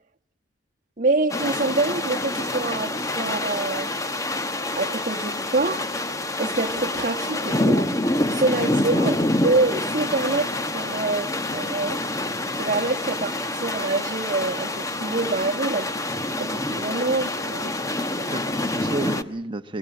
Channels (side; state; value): both; normal; correlation 0.23